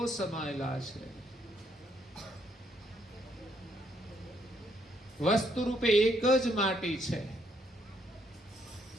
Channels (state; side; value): normal; both; correlation 0.72